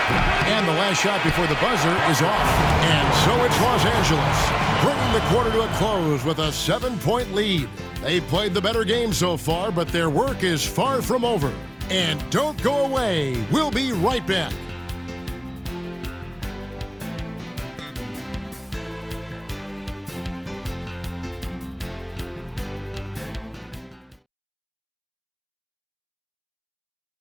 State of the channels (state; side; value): identical; both; correlation 1.00